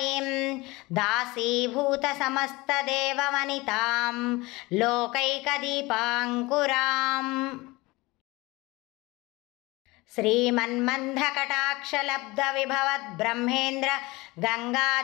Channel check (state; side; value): quieter; right; 22.3 dB